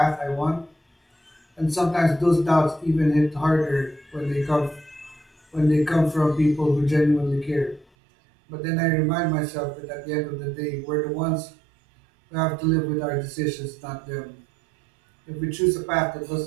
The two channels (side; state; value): left; drops out; at 7.9 s